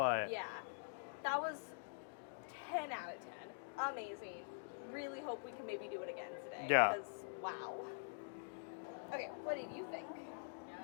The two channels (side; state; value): right; silent; digital silence